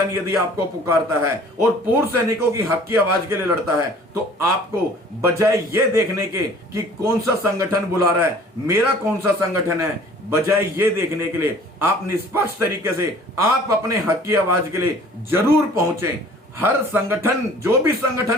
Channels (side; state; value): both; normal; correlation 0.50